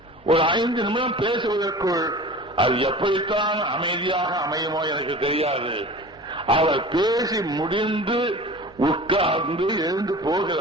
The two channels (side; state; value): both; normal; correlation 0.39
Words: ஒரு 5 நிமிடம் பேசுவதற்குள் அது எப்படித்தான் அமைதியாக அமையுமோ எனக்கு தெரியாது. அவர் பேசி முடிந்து உட்கார்ந்து எழுந்து போகிற